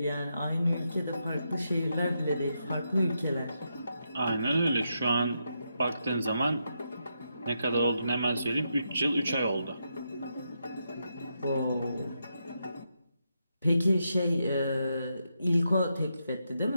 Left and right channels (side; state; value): both; inverted; correlation -0.83